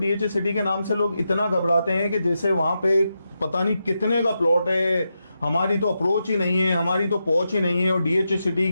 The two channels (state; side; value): inverted; both; correlation -0.87